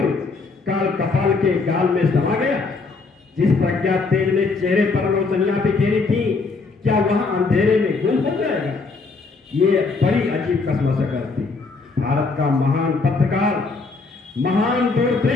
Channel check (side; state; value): right; quieter; 4.1 dB